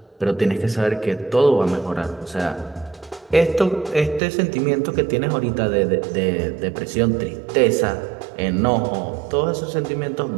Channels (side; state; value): left; drops out; at 4.2 s